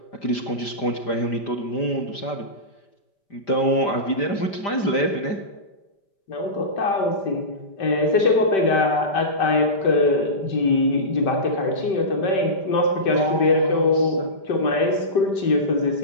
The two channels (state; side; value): late; right; 5.1 ms